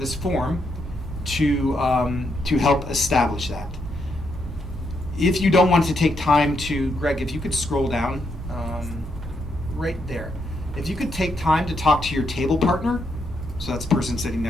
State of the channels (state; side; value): normal; both; correlation 0.78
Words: form to help establish that. If you don't want to take time to, Greg, if you could scroll down right there. If you could take time to talk to your table partner, so that's the person sitting